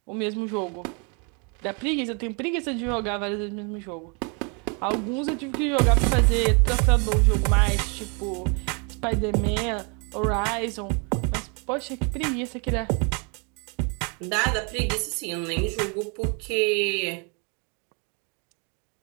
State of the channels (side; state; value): left; quieter; 34.9 dB